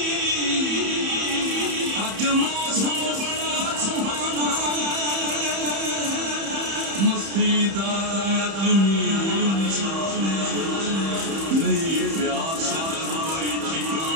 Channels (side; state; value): left; late; 31 ms